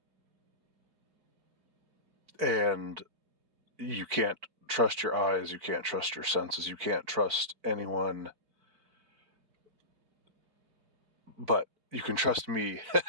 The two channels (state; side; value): late; left; 4.4 ms